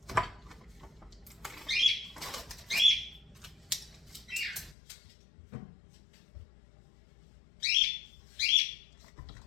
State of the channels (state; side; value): drops out; right; at 4.8 s